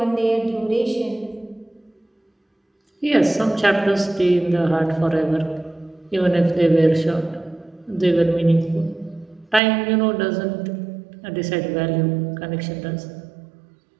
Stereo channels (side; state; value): left; drops out; at 9.6 s